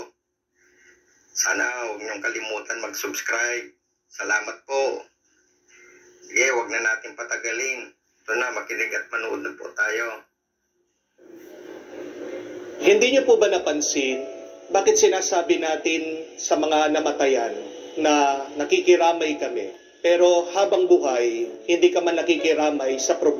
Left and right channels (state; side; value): identical; both; correlation 1.00